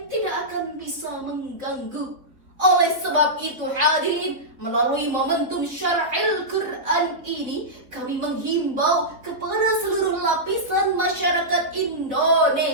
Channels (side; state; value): left; late; 3.9 ms